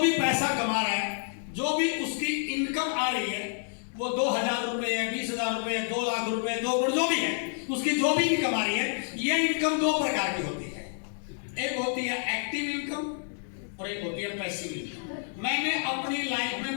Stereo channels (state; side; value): silent; right; 59 dB below the other